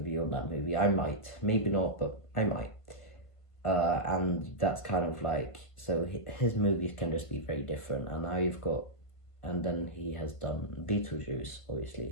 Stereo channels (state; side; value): late; right; 1.5 ms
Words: on that movie. I might, maybe not, but I might. And that's kind of like, so his movies can just be very different. And now you've got, and then he has done Beetlejuice,